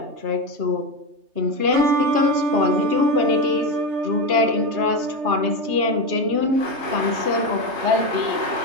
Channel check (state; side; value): late; left; 3.3 ms